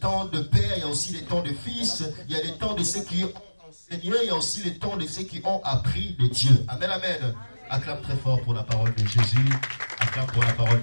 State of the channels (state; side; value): inverted; both; correlation -1.00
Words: de père, il y a aussi les temps de fils. Il y a les temps de ceux qui ont enseigné, il y a aussi les temps de ceux qui ont appris de Dieu. Amen, amen. Acclame très fort pour la parole de Jésus. Acclame pour la parole